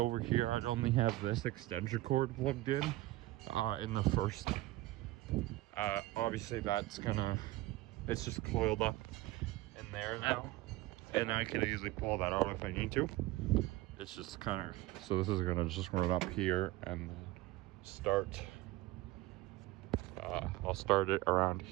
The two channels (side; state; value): left; quieter; 18.1 dB